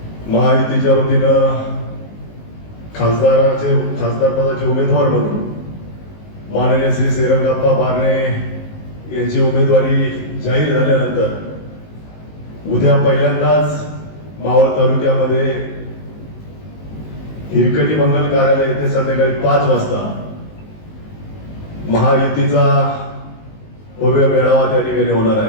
महायुतीच्या वतीनं खासदार पदाचे उमेदवार म्हणून माननीय श्री श्रीरंगाप्पा बारणे यांची उमेदवारी जाहीर झाल्यानंतर उद्या पहिल्यांदाच मावळ तालुक्यामध्ये हिरकणी मंगल कार्यालय येथे संध्याकाळी 5 वाजता महायुतीचा भव्य मेळावा त्या ठिकाणी होणार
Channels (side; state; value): right; late; 19 ms